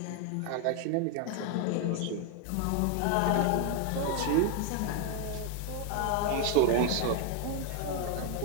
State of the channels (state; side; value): different; both; correlation 0.01